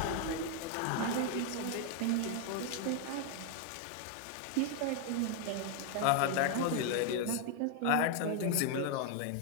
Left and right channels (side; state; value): both; different; correlation 0.00